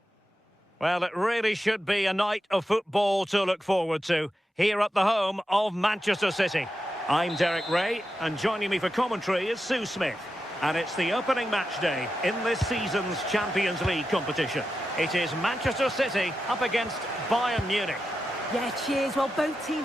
Well, it really should be a night of football to look forward to, here at the home of Manchester City. I'm Derek Ray, and joining me for commentary is Sue Smith. And it's the opening match day in this season's Champions League competition. It is Manchester City up against Bayern Munich. Yeah, cheers. Well, both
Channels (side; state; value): both; normal; correlation 0.89